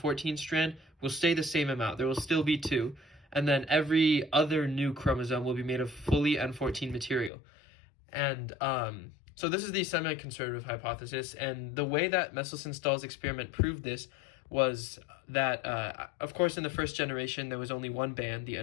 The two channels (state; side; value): drops out; right; at 7.3 s